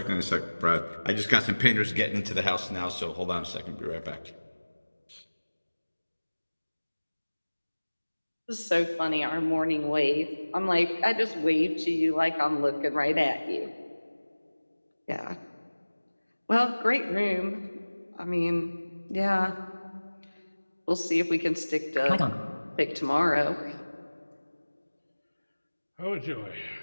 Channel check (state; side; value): inverted; both; correlation -1.00